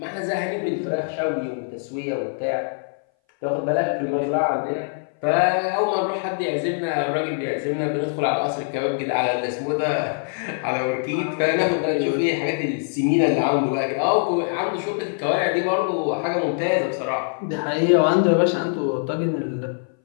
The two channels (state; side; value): silent; right; 60 dB below the other